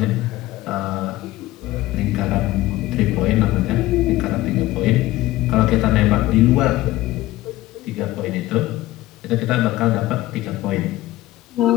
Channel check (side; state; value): right; quieter; 16.9 dB